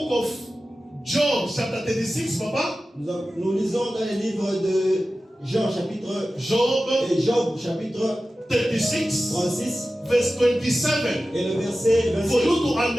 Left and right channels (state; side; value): normal; both; correlation 0.95